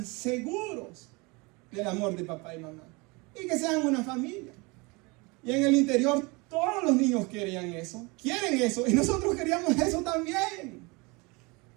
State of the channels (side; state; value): left; quieter; 26.8 dB